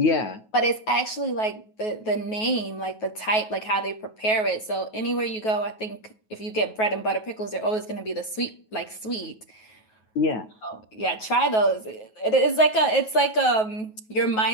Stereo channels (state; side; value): late; right; 9.3 ms